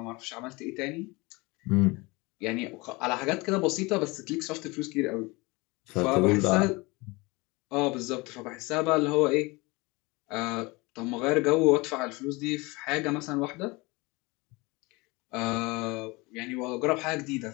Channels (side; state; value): right; quieter; 24.7 dB